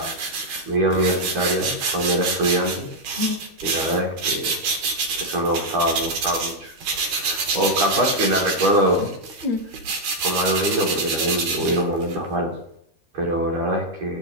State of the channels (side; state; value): left; late; 13 ms